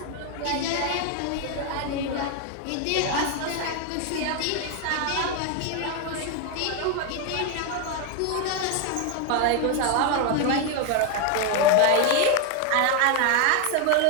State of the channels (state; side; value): different; both; correlation 0.01